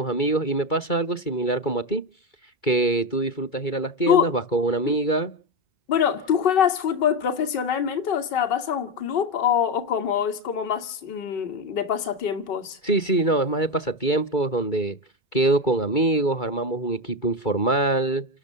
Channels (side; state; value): right; late; 2.6 ms